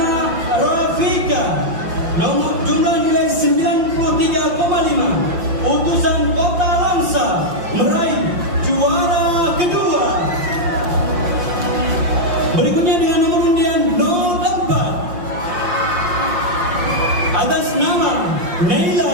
Rafika, nomor jumlah nilai 93,5, utusan Kota Langsa meraih juara kedua. Berikutnya dengan nomor undian 04 atas nama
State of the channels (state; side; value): late; left; 5.7 ms